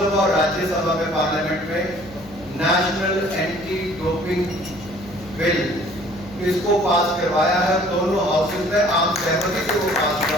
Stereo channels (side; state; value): left; noise; hum, 21 dB below the sound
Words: और राज्यसभा में, पार्लियामेंट में नेशनल एंटी डोपिंग बिल इसको पास करवाया है। दोनों हाउसेज में आम सहमति से वो पास